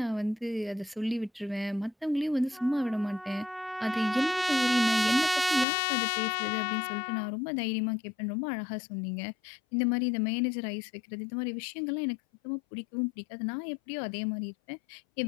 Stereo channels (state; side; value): drops out; right; at 5.7 s